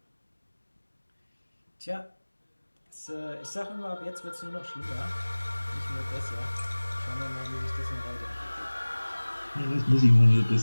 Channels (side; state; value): both; inverted; correlation -1.00